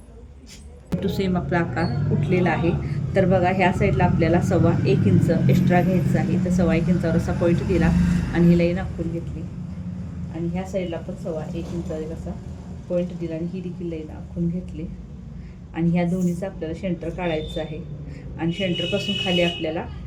तो सेम आपला आकार उठलेला आहे. तर बघा ह्या साईडला आपल्याला 1.25 इंच एक्स्ट्रा घ्यायचं आहे. तर 1.25 इंचावर असा पॉईंट दिला आणि ही लाईन आखून घेतली. आणि ह्या साईडला पण 1.25 इंचावर असा पॉईंट दिला आणि ही देखील लाईन आखून घेतली. आणि ह्या दोन्हीचा आपल्याला सेंटर काढायचं आहे. आणि सेंटरपासून खाली आपल्याला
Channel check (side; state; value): both; identical; correlation 1.00